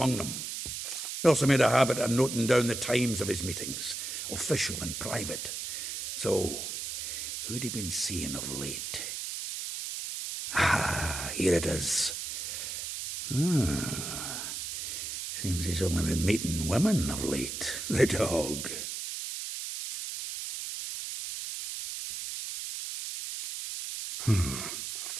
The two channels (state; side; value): noise; right; hiss, 5 dB below the sound